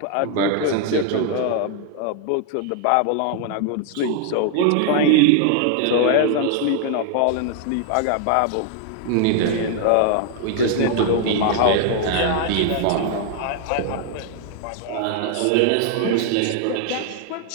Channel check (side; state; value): both; different; correlation 0.00